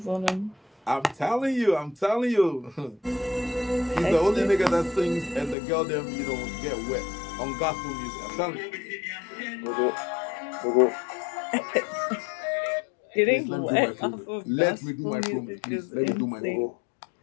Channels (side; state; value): right; drops out; at 5.6 s